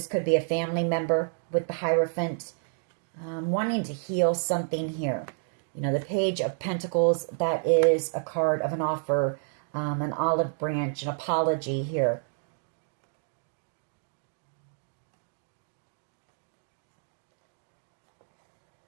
could be a family member with the Hierophant. Wanting to heal something here. You know, the Page of Pentacles, that is a card of an offer, an olive branch, an apology here.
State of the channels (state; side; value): silent; left; digital silence